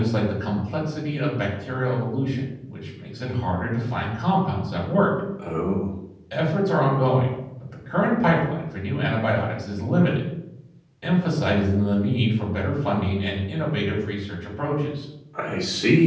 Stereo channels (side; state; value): both; identical; correlation 1.00